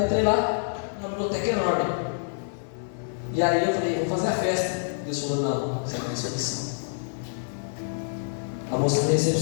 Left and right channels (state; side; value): silent; right; digital silence